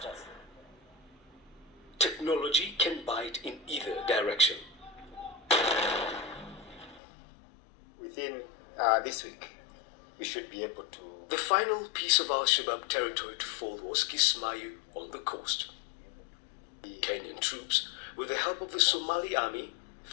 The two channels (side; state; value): right; drops out; at 7.0 s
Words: Technology can bite in either direction. Within this week, we should be able to... The final piece of Al-Shabaab territory to fall was Kismayo on the coast. Kenyan troops, with the help of the Somali army,